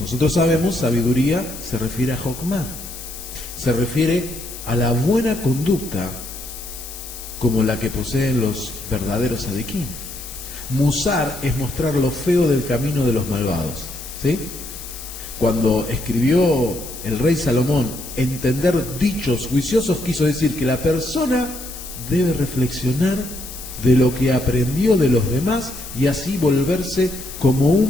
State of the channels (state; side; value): noise; left; hiss, 12 dB below the sound